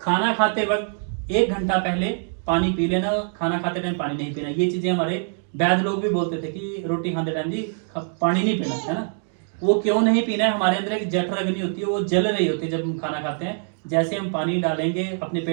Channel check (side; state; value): left; silent; 63 dB below the other